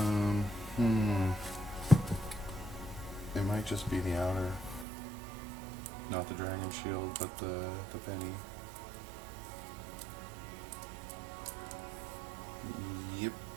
It might just be the outer. Not the dragon shield, but the penny. Yep.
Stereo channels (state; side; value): drops out; left; at 4.9 s